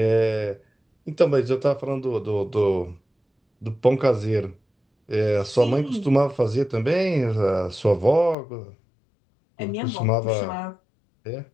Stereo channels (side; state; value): right; drops out; at 8.3 s